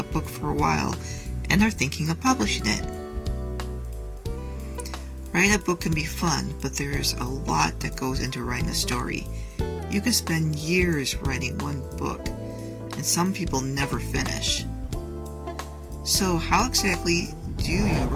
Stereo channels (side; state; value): both; identical; correlation 1.00